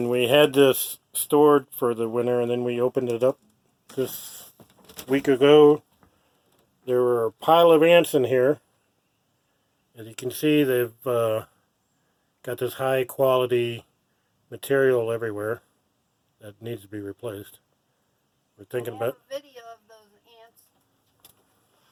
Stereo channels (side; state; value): both; identical; correlation 1.00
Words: we had this stored for the winter and then we opened it up this week ago, there were a pile of ants in here. As you can see, they've got this high quality material everywhere that needs to be replaced. We're thinking about a video of those ants.